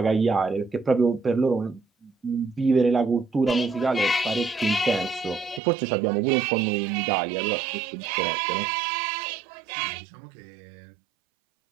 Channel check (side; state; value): left; drops out; at 5.6 s